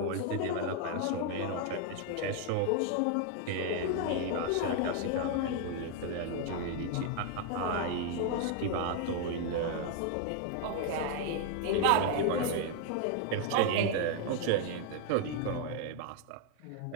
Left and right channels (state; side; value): different; both; correlation 0.00